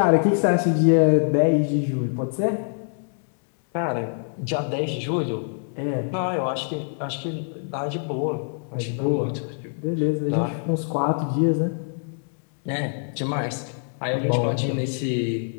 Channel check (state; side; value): silent; right; 62 dB below the other